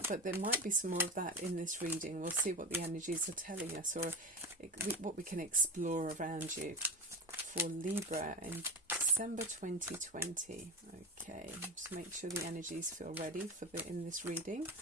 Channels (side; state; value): both; normal; correlation 0.22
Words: but there might be some more of that in this reading. We'll see what the energies are telling us, or what we can explore around you for Libra in December 2020. Okay, just make sure the energies feel ready for in this reading.